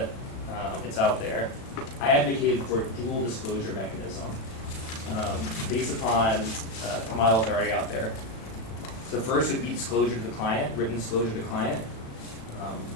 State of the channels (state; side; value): late; right; 36 ms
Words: it's out there, I advocated for a dual disclosure mechanism based upon models already out there. The first would be disclosure to the client, written disclosure to the client.